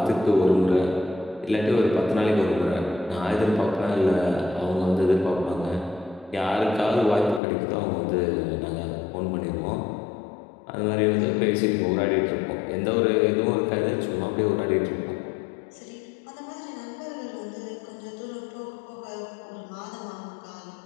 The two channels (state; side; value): drops out; right; at 7.4 s